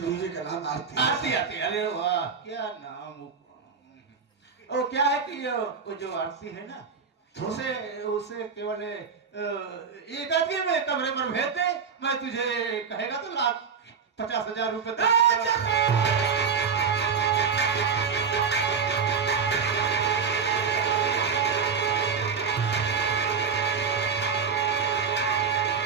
बीवी का नाम आरती है। आरती। आरती, अरे वाह क्या नाम। वो क्या है कि वो जो आरती है ना, उसे उसे केवल एक आदमी में कमरे पर भेज दे, मैं तुझे कहेगा तो 1,50,000 रुपए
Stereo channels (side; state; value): left; quieter; 6.0 dB